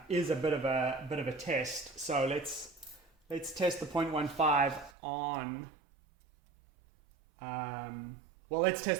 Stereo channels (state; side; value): drops out; left; at 4.9 s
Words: is a bit of a test. So let's test the 0.15 on. Well, let's